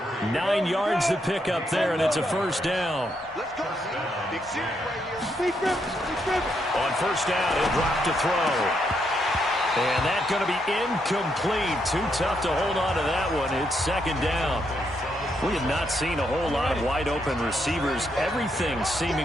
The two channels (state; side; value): normal; both; correlation 0.78